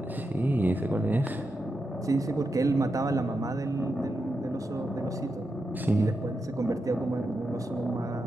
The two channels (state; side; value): normal; both; correlation 0.87